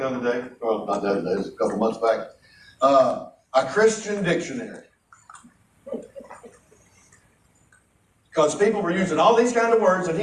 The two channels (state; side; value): identical; both; correlation 1.00